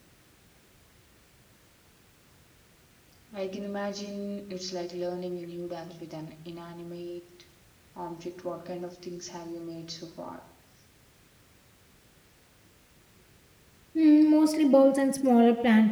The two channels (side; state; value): both; identical; correlation 1.00